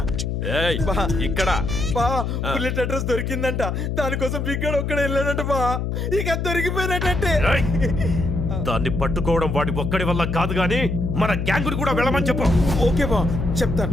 ఏయ్ ఇక్కడ బా బుల్లెట్ అడ్రస్ దొరికిందంట. దానికోసం బిగ్గాడు ఒక్కడ వెళ్ళాడంట బా. ఇక దొరికిపోయినట్టే. ఏయ్, దాన్ని పట్టుకోవడం వాడి ఒక్కడి వల్ల కాదు గాని మన గ్యాంగుని కూడా వెళ్ళమని చెప్పు. ఓకే బా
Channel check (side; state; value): left; noise; hum, 2 dB below the sound